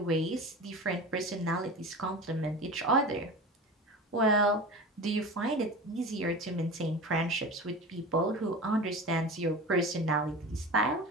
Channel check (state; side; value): normal; both; correlation 0.32